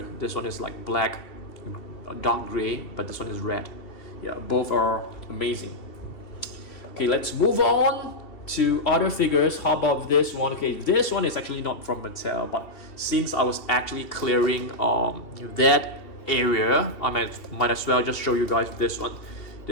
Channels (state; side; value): late; right; 2.7 ms